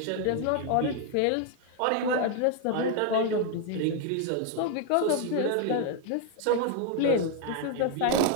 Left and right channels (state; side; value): different; both; correlation 0.01